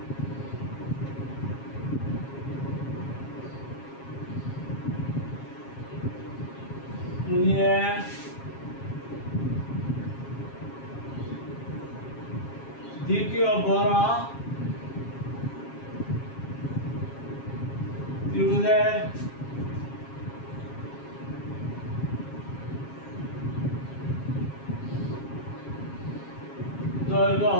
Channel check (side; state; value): right; late; 7.4 ms